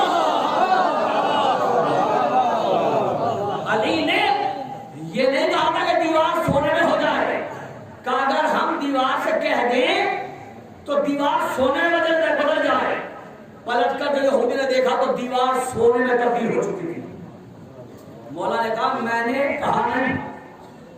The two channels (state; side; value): identical; both; correlation 1.00